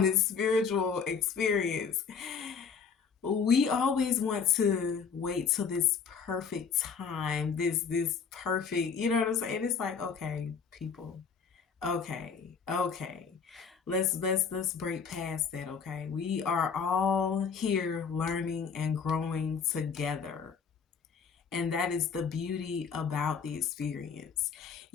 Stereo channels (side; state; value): right; quieter; 6.1 dB